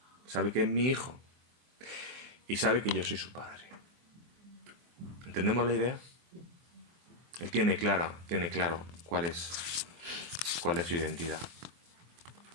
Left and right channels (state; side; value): late; left; 24 ms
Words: Sabe que es mi hijo. Y sabe que yo soy su padre. ¿Entendemos la idea? Él tiene claro cuál es su identidad.